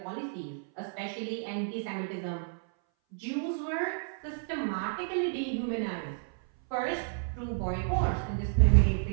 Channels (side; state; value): left; silent; 57 dB below the other